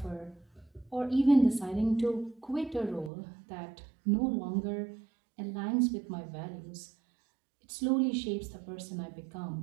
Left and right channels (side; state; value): left; drops out; at 3.1 s